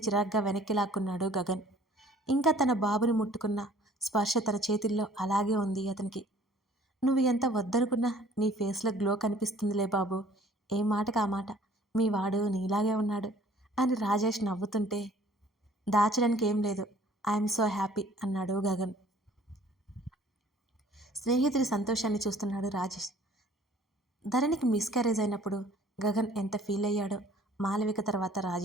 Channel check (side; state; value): both; normal; correlation 0.54